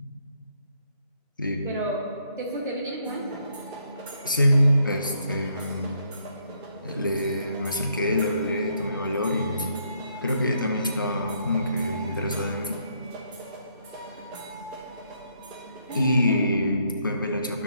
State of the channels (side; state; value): both; inverted; correlation -0.72